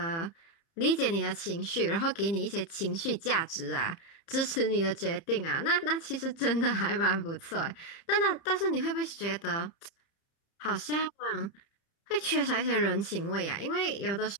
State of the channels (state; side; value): late; right; 30 ms